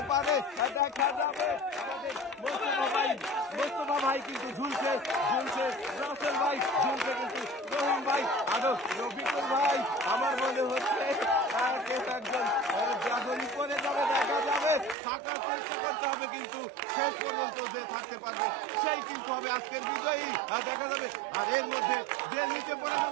পারে দেখা যাবে। আমাদের মোস্তফা ভাই কিন্তু ঝুলছে, রাসেল ভাই ঝুলছে, কিন্তু রহিম ভাই আরো রফিকুল ভাই আমার মনে হচ্ছে একজন যখনই করে যাবে দেখা যাবে। থাকার চেষ্টা করতে হবে, কিন্তু শেষ পর্যন্ত যে থাকতে পারবে সেই কিন্তু হবে আজকের বিজয়ী দেখা যাবে। আর এর মধ্যে যে নিচে পড়ে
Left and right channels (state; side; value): drops out; left; at 15.0 s